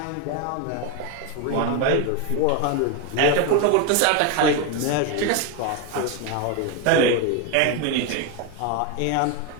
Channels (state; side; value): different; both; correlation 0.02